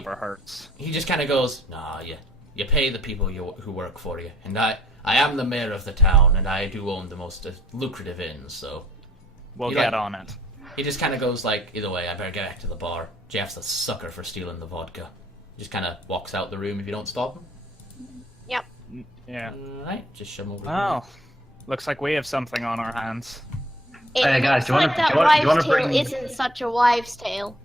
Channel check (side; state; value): both; normal; correlation 0.60